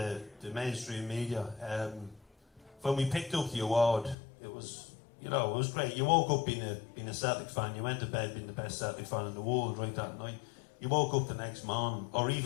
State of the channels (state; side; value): drops out; right; at 4.2 s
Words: mainstream media, when we picked up the award, it was great. You woke up being a Celtic fan, you went to bed being the best Celtic fan in the world right that night. You woke up the next morning, or